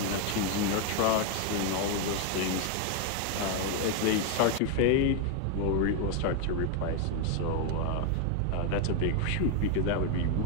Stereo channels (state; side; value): different; both; correlation 0.01